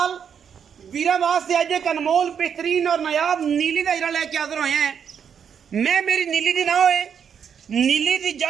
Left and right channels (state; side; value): quieter; left; 7.6 dB